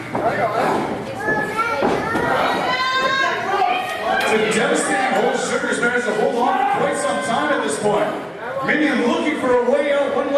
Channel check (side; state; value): both; identical; correlation 1.00